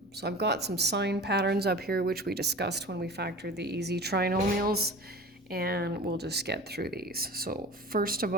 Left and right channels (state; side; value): normal; both; correlation 0.38